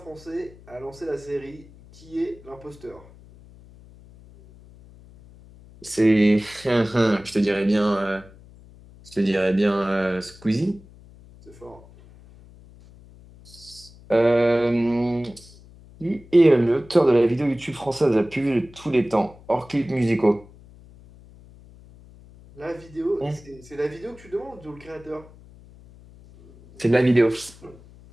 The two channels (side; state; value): left; noise; hum, 23 dB below the sound